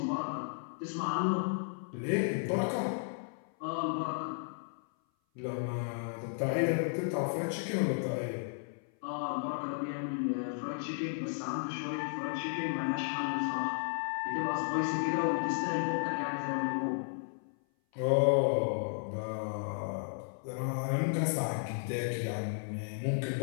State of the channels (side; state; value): right; silent; 55 dB below the other